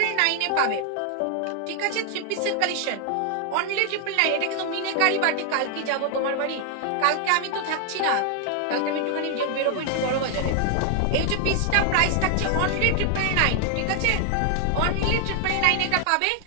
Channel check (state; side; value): different; both; correlation 0.00